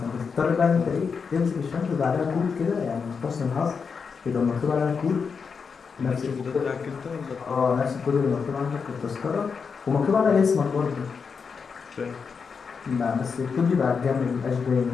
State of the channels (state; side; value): quieter; right; 5.7 dB